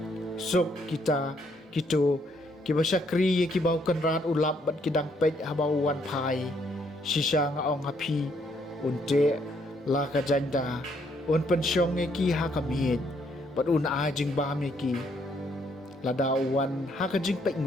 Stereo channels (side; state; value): both; normal; correlation 0.70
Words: suk kita kitu ki ba syakri ki bau kan rat ulap bat ki dang pej habau wan phai shisha nga ong hapi unte la ka janda un pensyong ki ha kamit pat un a jing ba mi ki la dawan ha ka jing pek